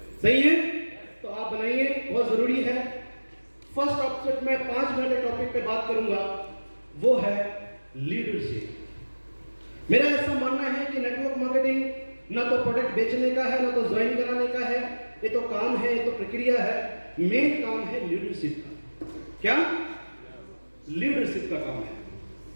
सही है? तो आप बनाइए, बहुत जरूरी है। फर्स्ट ऑब्जेक्ट में 5 मिनट के टॉपिक पे बात करूंगा, वो है लीडरशिप। मेरा ऐसा मानना है कि नेटवर्क मार्केटिंग ना तो प्रोडक्ट बेचने का है, ना तो ज्वाइन कराने का है, ये तो काम है, ये तो प्रक्रिया है। मेन काम है लीडरशिप का। क्या? लीडरशिप का काम है।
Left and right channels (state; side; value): inverted; both; correlation -1.00